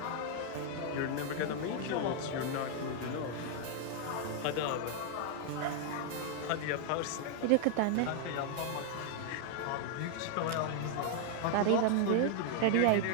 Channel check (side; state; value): both; different; correlation 0.00